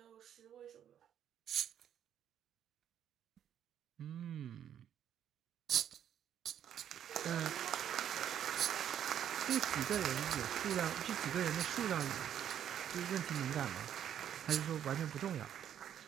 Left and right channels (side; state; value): left; quieter; 9.8 dB